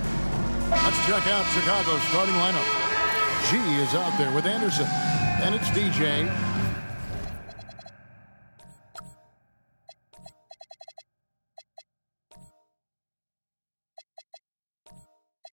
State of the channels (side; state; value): both; inverted; correlation -1.00